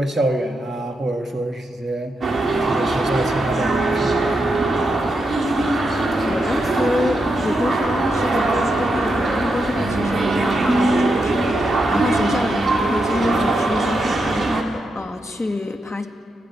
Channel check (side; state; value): both; normal; correlation 0.84